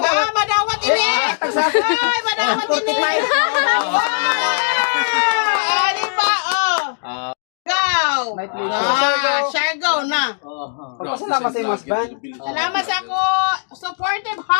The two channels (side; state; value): right; silent; 67 dB below the other